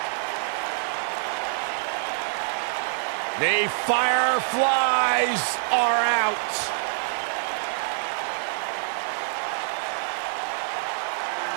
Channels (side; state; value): left; silent; digital silence